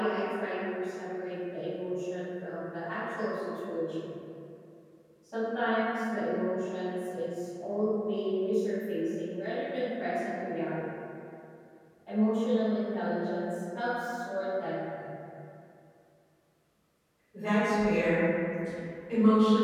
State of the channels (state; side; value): identical; both; correlation 1.00